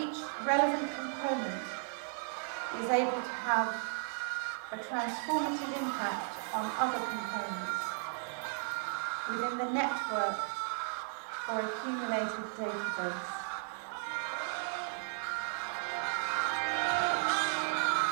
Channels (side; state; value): left; silent; 54 dB below the other